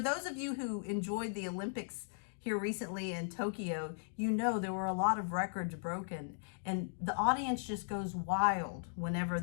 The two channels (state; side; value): silent; right; digital silence